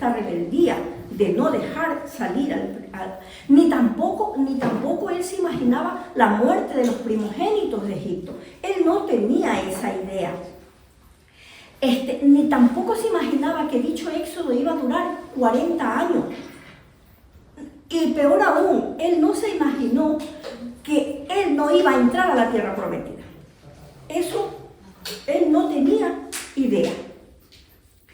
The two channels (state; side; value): identical; both; correlation 1.00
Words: rebeldía, de no dejar salir ni tampoco él se imaginaba la muerte de los primogénitos de Egipto. Él no tenía esa idea. Ni tampoco se imaginaba que dicho éxodo iba a durar 40 años. Y peor aún, él no se imaginó que él no iba a entrar a la tierra prometida. Eso él no tenía idea.